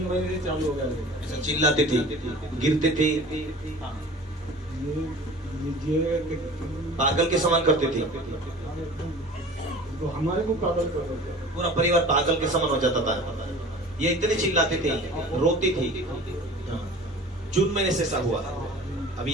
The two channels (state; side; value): normal; both; correlation 0.42